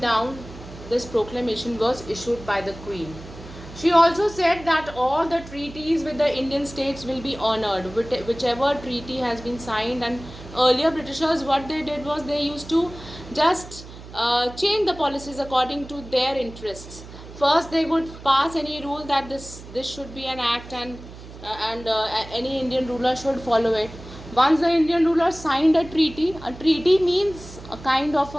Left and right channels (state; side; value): noise; right; hum, 16 dB below the sound